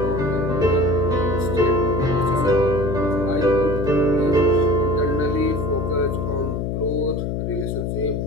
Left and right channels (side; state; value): left; noise; hum, 2 dB below the sound